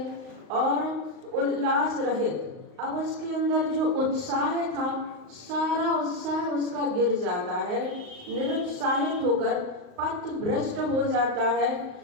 और उल्लास रहित, अब उसके अंदर जो उत्साह था सारा उत्साह उसका गिर जाता है, निरुत्साहित होकर पथभ्रष्ट हो जाता है,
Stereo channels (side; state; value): left; late; 39 ms